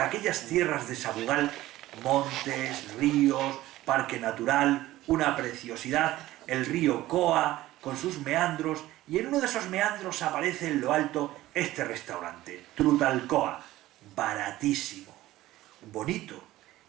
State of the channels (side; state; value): left; quieter; 16.0 dB